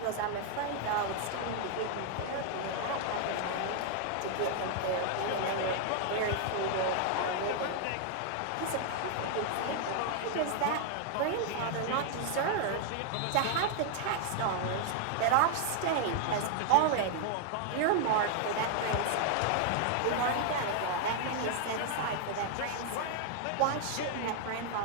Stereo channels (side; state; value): both; different; correlation 0.00